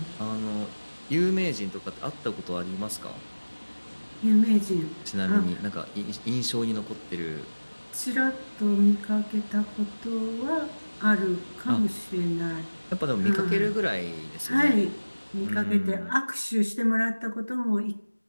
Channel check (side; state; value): both; inverted; correlation -1.00